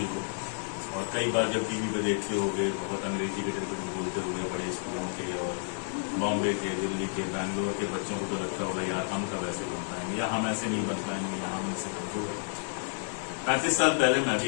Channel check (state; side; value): silent; right; 57 dB below the other